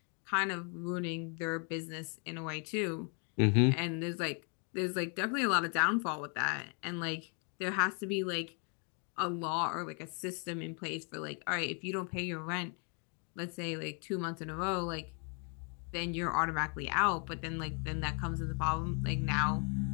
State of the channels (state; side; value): quieter; right; 38.7 dB